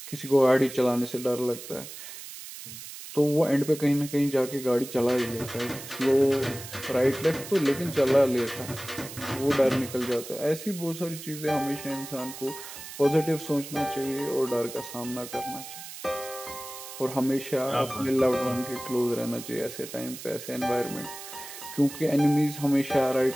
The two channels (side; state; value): right; noise; hiss, 12 dB below the sound